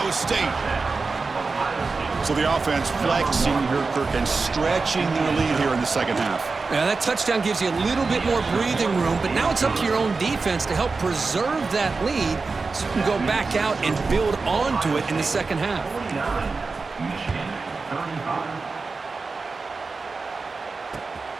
State. So the offense flexing here, Kirk, and stretching their lead here in the 2nd half. Now, that touchdown gives you a little bit more breathing room, but now it's up to your own defense to help preserve that lead so you can go back out and build onto it in the 2nd half.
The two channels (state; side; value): quieter; left; 4.2 dB